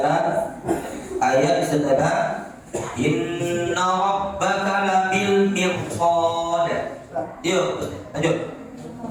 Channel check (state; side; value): identical; both; correlation 1.00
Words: ayat setelah inna rabbaka labil mirsad. Yuk, lanjut.